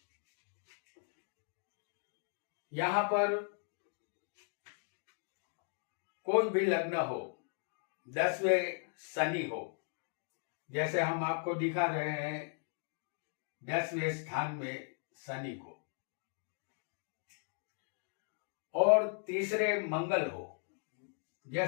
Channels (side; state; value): right; silent; 53 dB below the other